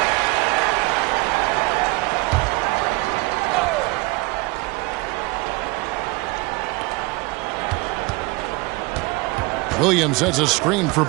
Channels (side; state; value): left; quieter; 24.1 dB